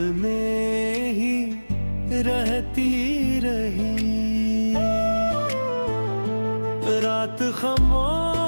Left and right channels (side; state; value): both; inverted; correlation -1.00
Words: में ही रहती रही। रात